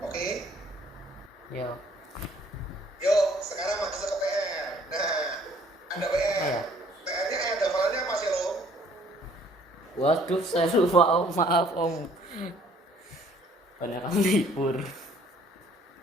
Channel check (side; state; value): both; normal; correlation 0.59